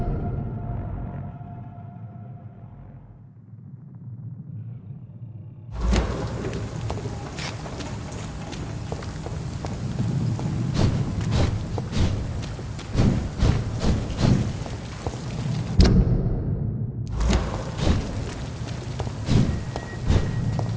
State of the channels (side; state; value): both; identical; correlation 1.00